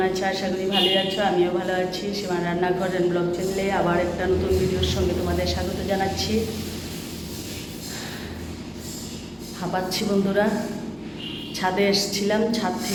আছো? আশা করি ভালোই আছো। আমিও ভালো আছি। সীমার রান্নাঘর এন্ড ব্লগ চ্যানেলে আবার একটা নতুন ভিডিওর সঙ্গে তোমাদের স্বাগত জানাচ্ছি। হাঁপাচ্ছি বন্ধুরা, ছাদে এসেছিলাম, ছাদ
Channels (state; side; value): identical; both; correlation 1.00